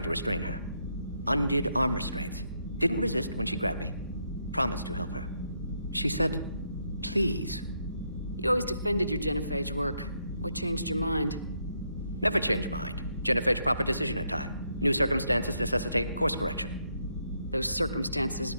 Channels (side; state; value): both; inverted; correlation -0.76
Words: to restrain her. Undid arm restraints. Didn't resist when she grabbed me. Promised to help her. She said, please. You always defended your genophage work. What changed your mind? Never change mind. Genophage proper decision at time. New circumstances necessitate course correction. Those circumstances